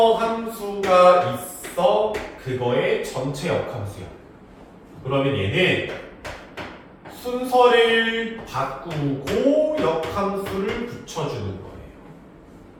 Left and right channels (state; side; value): identical; both; correlation 1.00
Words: 함수가 있어 그거의 전체 역함수야. 그러면 얘는 순서를 바꾸고 역함수를 붙여주는 거예요.